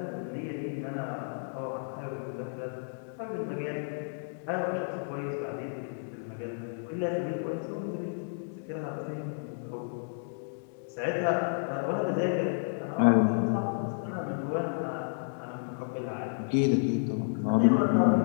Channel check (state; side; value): silent; right; digital silence